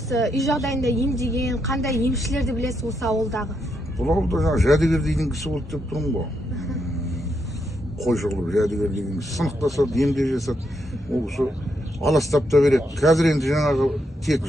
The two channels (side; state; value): both; normal; correlation 0.80